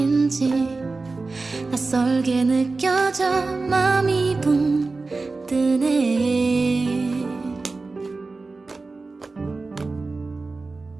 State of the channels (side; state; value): left; quieter; 3.7 dB